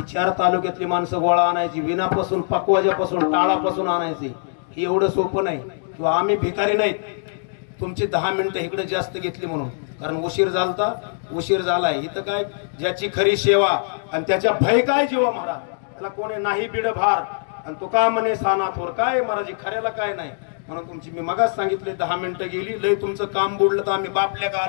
4 तालुक्यातली माणसं गोळा आणायची, विनापासून पकवाजापासून टाळापासून आणायची, ही एवढं सोपं नाही. किंवा आम्ही भिकारी नाहीत, तुमची 10 मिनिटं इकडे जास्त घेतली म्हणून, कारण उशीर झालाय. इथं काय ज्याची खरी सेवा आणि त्याच्या भय काय जीवा महाराज, त्याला कोणी नाही बिड भार, आणि तो का म्हणे साना थोर, काय महाराज खऱ्याला काय नाही. म्हणून तुमची मी मगाच सांगितले 10 मिनिटं गेली, लय तुमचं काम बुडलं तर आम्ही बापल्या का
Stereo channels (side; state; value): right; silent; digital silence